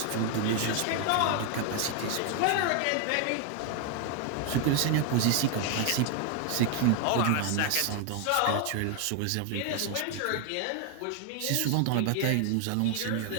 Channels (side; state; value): both; different; correlation 0.00